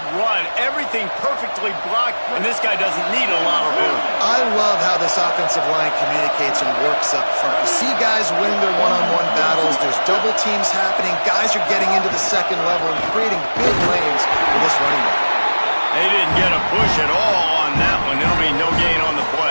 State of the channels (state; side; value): inverted; both; correlation -1.00